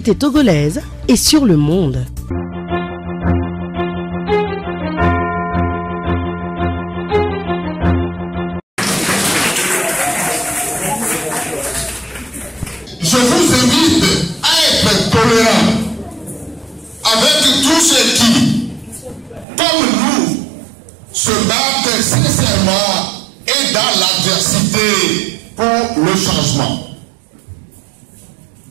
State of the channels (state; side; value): drops out; left; at 19.5 s